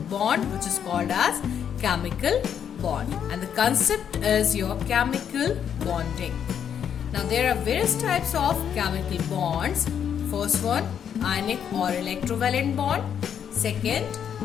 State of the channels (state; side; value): quieter; right; 8.4 dB